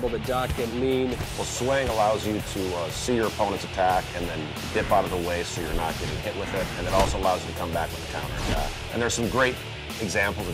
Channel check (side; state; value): both; identical; correlation 1.00